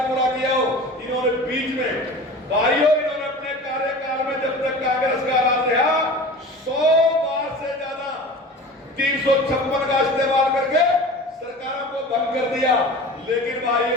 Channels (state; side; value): normal; both; correlation 0.37